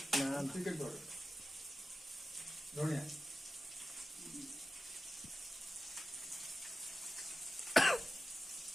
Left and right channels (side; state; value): both; normal; correlation 0.94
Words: না চিকেন পাউডার ধনিয়া